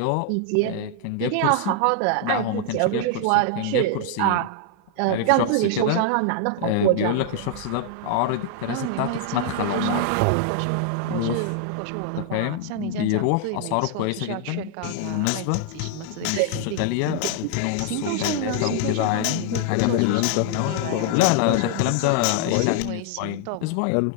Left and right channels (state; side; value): different; both; correlation 0.00